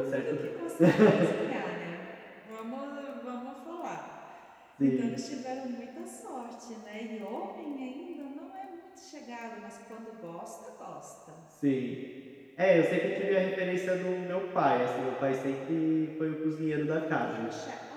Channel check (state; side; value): identical; both; correlation 1.00